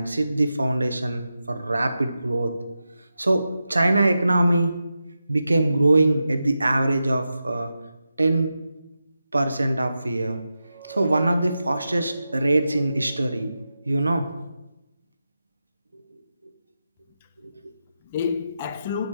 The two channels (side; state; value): both; inverted; correlation -0.90